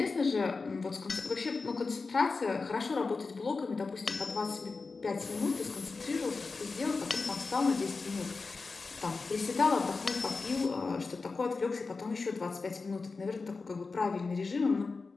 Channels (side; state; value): right; quieter; 4.2 dB